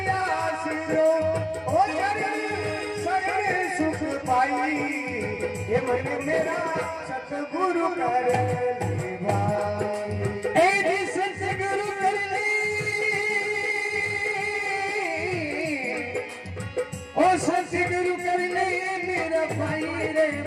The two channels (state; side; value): identical; both; correlation 1.00